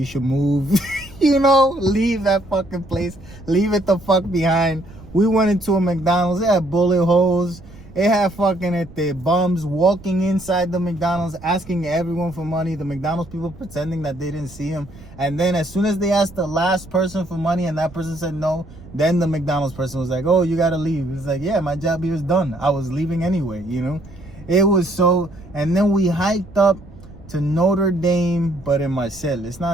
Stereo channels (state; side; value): noise; right; rumble, 20 dB below the sound